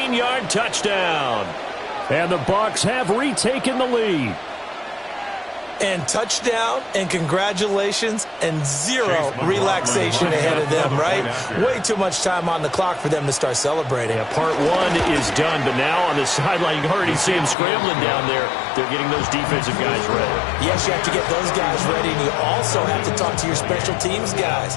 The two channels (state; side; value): drops out; right; at 17.6 s